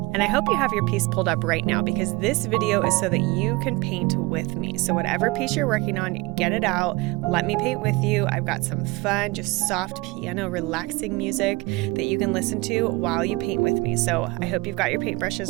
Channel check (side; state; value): left; quieter; 23.4 dB